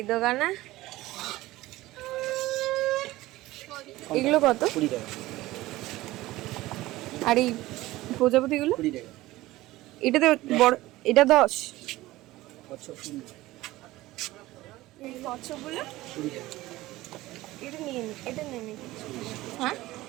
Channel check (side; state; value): left; quieter; 17.7 dB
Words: দোকানে? এগুলো কত? 20 টাকা। আর এই প্রজাপতিগুলো? 20 টাকা। এটাতে বড়, এটা 10। কচ্ছপ 20 এই কচ্ছপগুলো? 20 টাকা। এটা নিয়ে নি, এটা নিয়ে নি। হ্যাঁ